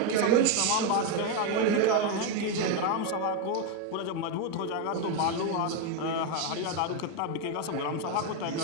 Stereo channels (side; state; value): both; different; correlation 0.02